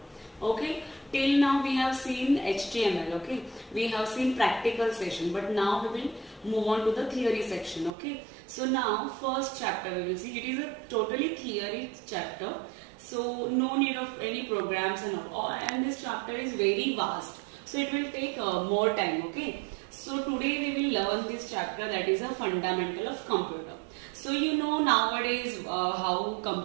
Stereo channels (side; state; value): left; drops out; at 7.9 s